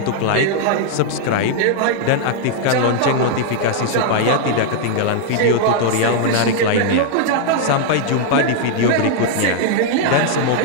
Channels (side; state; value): both; different; correlation 0.00